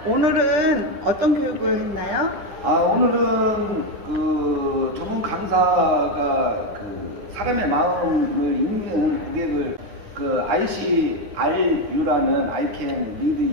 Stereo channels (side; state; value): left; late; 9.5 ms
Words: 오늘은 어떤 교육을 했나요? 오늘은 그 전문 강사가 그 사람의 마음을 읽는 고객을 그 ICRU라는 I can